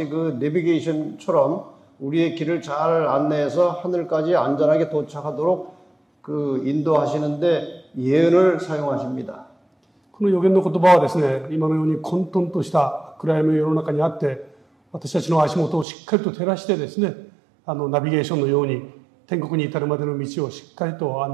그 내비게이션처럼 우리의 길을 잘 안내해서 하늘까지 안전하게 도착하도록 그 인도하시는데 예언을 사용하십니다. この予言の言葉はですね、今のように混沌とした暗闇の世の中にあって、私たちの足元をしっかりと照らしてですね、ナビゲーションのように天国に至るまでの道をしっかりと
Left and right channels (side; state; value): left; drops out; at 15.9 s